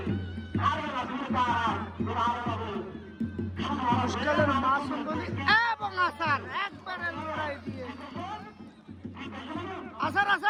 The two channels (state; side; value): identical; both; correlation 1.00